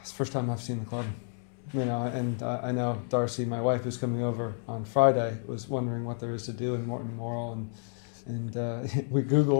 the first time I've seen the club, and I know Darcy, my wife, who's coming over on Friday, was wondering what there is to do in Morton Morrow, and we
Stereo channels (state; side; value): silent; right; 58 dB below the other